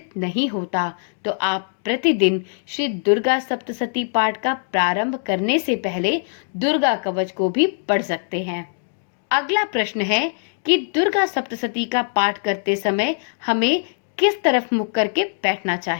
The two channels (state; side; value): silent; right; 63 dB below the other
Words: नहीं होता। तो आप प्रतिदिन श्री दुर्गा सप्तशती पाठ का प्रारंभ करने से पहले दुर्गा कवच को भी पढ़ सकते हैं। अगला प्रश्न है कि दुर्गा सप्तशती का पाठ करते समय हमें किस तरफ मुख करके बैठना